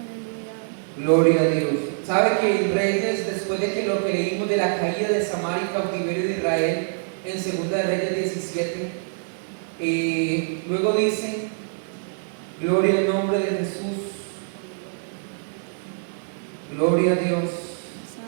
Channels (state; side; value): silent; left; 62 dB below the other